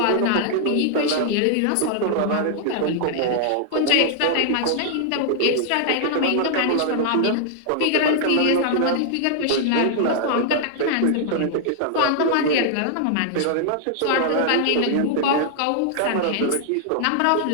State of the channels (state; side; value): different; both; correlation 0.00